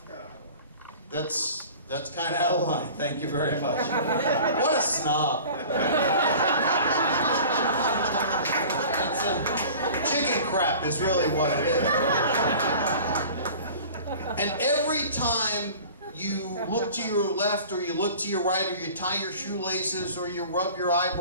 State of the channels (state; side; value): inverted; both; correlation -0.43